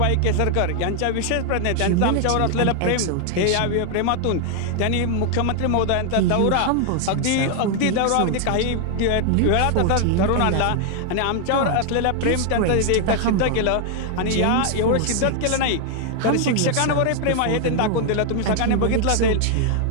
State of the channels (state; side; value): different; both; correlation 0.00